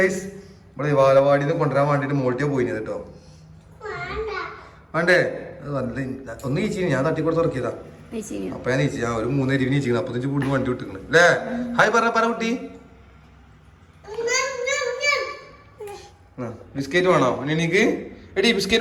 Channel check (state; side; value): identical; both; correlation 1.00